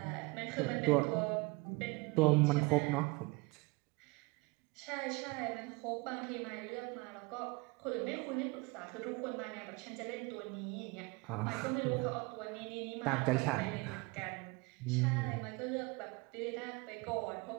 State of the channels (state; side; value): quieter; left; 25.8 dB